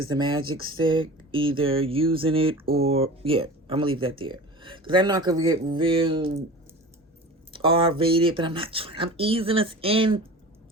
the magic stick, either using it or, yeah, I'm gonna leave that there. Because I'm not gonna get real R-rated, but I'm easing us in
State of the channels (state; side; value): normal; both; correlation 0.36